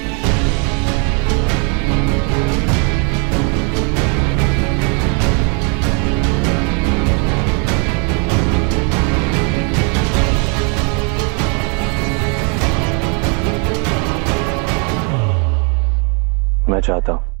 मैं चाहता हूं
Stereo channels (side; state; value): left; quieter; 36.0 dB